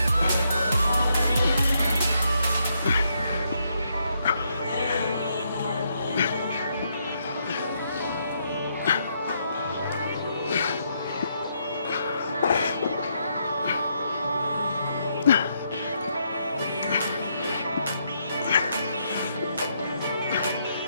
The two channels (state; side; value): inverted; both; correlation -0.76